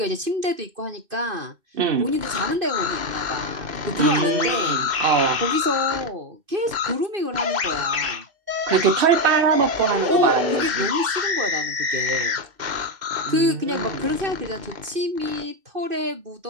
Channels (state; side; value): late; left; 2.6 ms